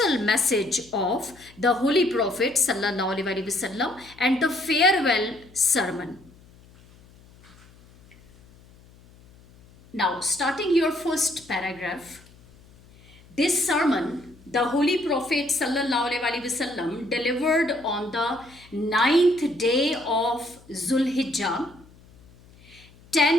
message of the Holy Prophet Sallallahu Alaihi Wasallam and the farewell sermon. Now, starting your first paragraph, this sermon, the Holy Prophet Sallallahu Alaihi Wasallam delivered on the 9th day of Zulhijjah,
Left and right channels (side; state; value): left; noise; hum, 25 dB below the sound